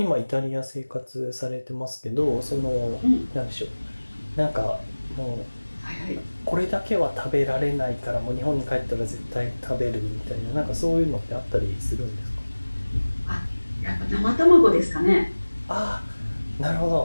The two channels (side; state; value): both; inverted; correlation -1.00